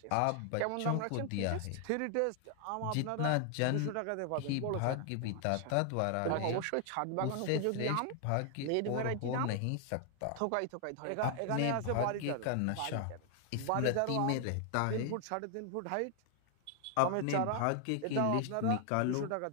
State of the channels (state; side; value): different; both; correlation 0.00